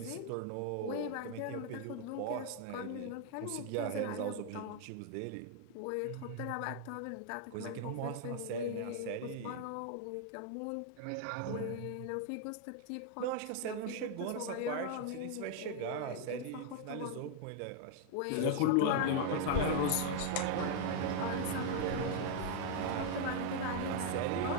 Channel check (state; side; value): different; both; correlation 0.00